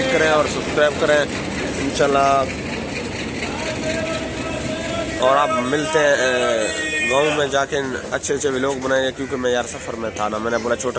करें और सब्सक्राइब करें इंशाल्लाह। और आप मिलते हैं गांव में जाके अच्छे अच्छे व्लॉग बनाएंगे, क्योंकि मैं यार सफ़र में था ना। मैंने बोला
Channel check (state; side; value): identical; both; correlation 1.00